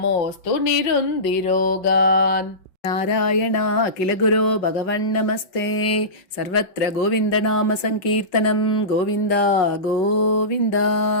निरुन्दिरोगान् नारायण अखिल गुरो भगवन्नमस्ते सर्वत्र गोविन्दनाम संकीर्तनं गोविन्द गोविन्द।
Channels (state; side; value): late; right; 5.4 ms